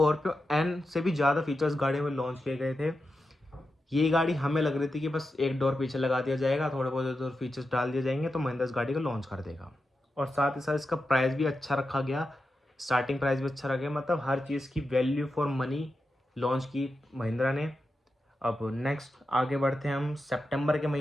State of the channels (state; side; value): normal; both; correlation 0.89